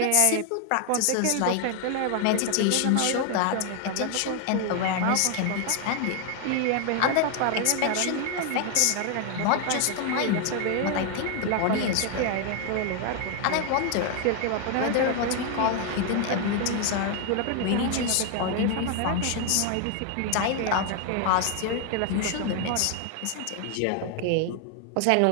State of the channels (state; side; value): different; both; correlation 0.00